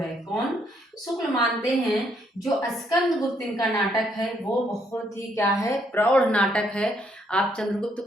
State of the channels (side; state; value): both; normal; correlation 0.71